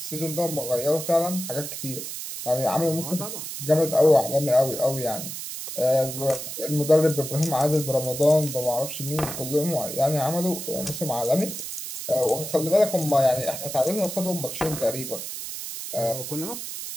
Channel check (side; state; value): right; noise; hiss, 7 dB below the sound